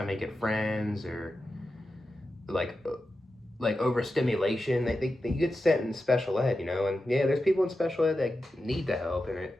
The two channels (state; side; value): normal; both; correlation 0.91